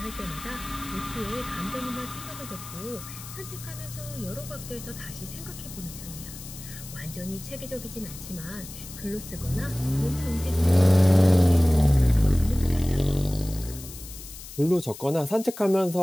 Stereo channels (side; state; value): left; noise; hiss, 14 dB below the sound